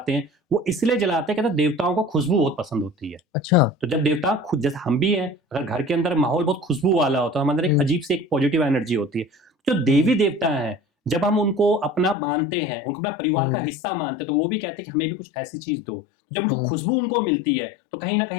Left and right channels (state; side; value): drops out; right; at 12.2 s